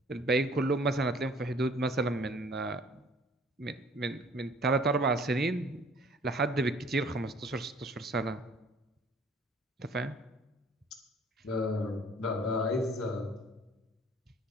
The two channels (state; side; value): normal; both; correlation 0.54